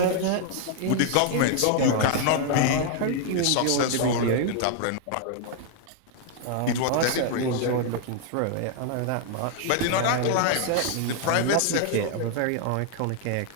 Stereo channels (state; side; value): different; both; correlation 0.00